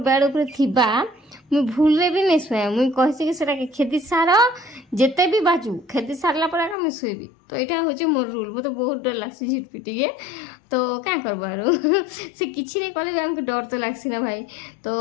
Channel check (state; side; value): drops out; right; at 6.8 s